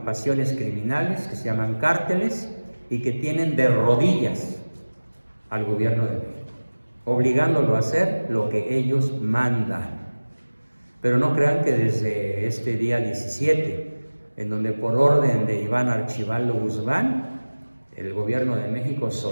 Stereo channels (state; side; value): inverted; both; correlation -1.00